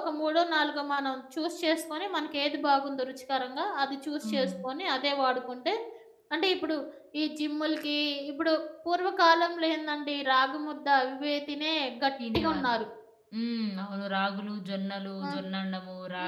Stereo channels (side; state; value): both; identical; correlation 1.00